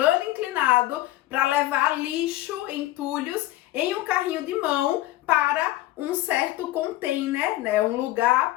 inclinado para levar lixo, entulhos, em um carrinho de mão para um certo container, né, um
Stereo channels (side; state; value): right; quieter; 16.3 dB